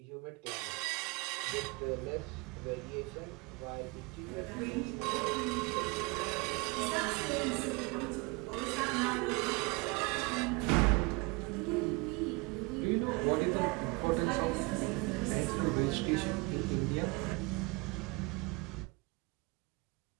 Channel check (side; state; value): left; quieter; 27.2 dB